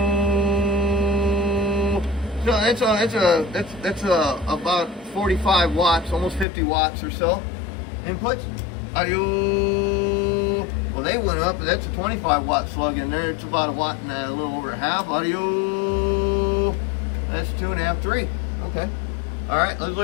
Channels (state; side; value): drops out; right; at 6.5 s